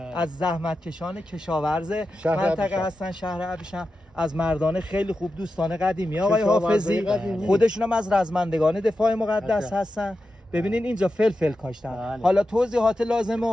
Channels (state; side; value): normal; both; correlation 0.91